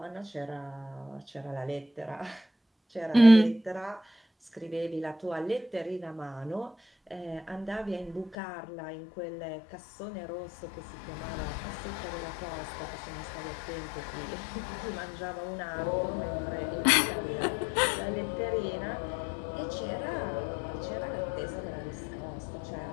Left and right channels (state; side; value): drops out; right; at 8.3 s